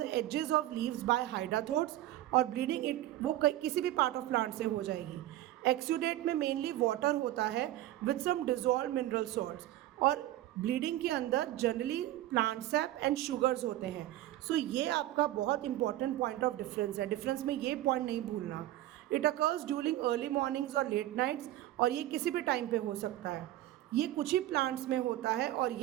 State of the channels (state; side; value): quieter; left; 14.7 dB